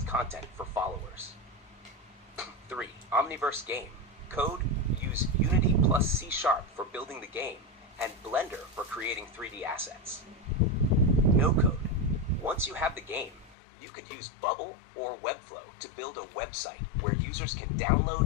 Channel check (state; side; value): drops out; right; at 13.6 s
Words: content for followers. 3. Omniverse game. Code. Use Unity plus C# for building the game, and Blender for creating 3D assets. No code. Once you have the game, you could use Bubble or Webflow to build a website where users can